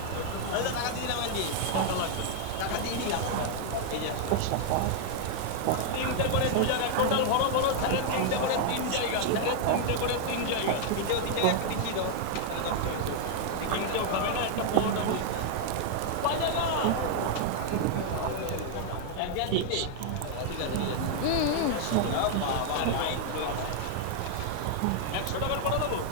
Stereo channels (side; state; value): both; different; correlation -0.01